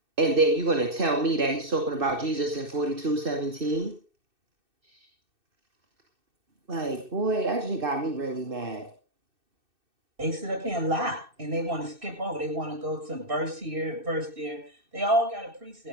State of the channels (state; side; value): late; left; 2.6 ms